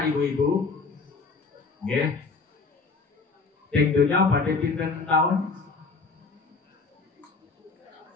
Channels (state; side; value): quieter; right; 4.4 dB